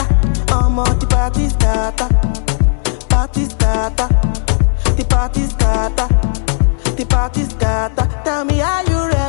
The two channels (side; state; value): right; silent; digital silence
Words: I'm on the party scatter, party scatter, the party scatter, the party scatter. Tell me, are you